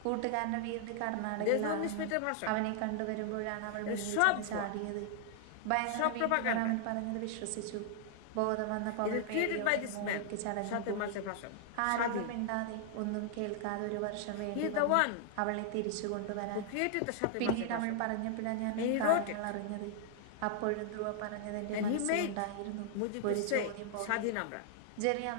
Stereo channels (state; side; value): different; both; correlation 0.00